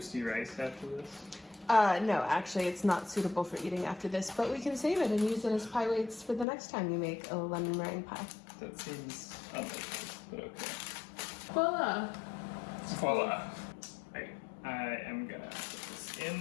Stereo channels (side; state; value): right; drops out; at 6.5 s